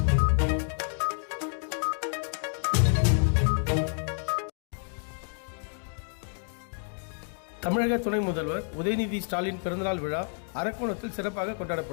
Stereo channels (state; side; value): silent; right; 56 dB below the other